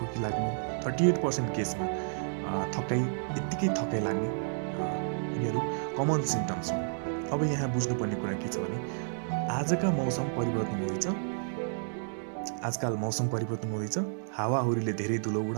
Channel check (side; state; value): left; silent; digital silence